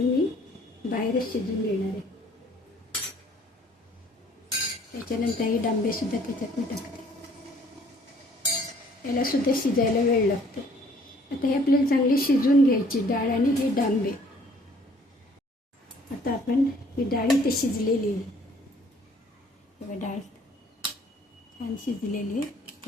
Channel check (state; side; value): normal; both; correlation 0.58